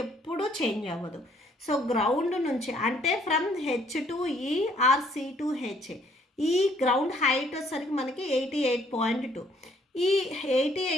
ఎప్పుడూ చేంజ్ అవ్వదు. సో గ్రౌండ్ నుంచి అంటే ఫ్రమ్ హెచ్ టు ఈ ఆర్ సి టు హెచ్ ఈ గ్రౌండ్ హైట్ వచ్చేసరికి మనకి 88.2. ఈ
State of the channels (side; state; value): both; normal; correlation 0.64